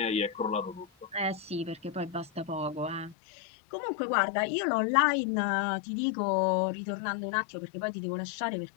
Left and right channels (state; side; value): drops out; right; at 3.2 s